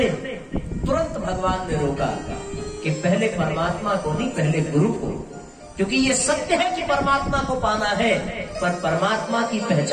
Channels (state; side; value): identical; both; correlation 1.00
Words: तुरंत भगवान ने रोका कि पहले परमात्मा को नहीं, पहले गुरु को, क्योंकि ये सत्य है कि परमात्मा को पाना है, पर परमात्मा की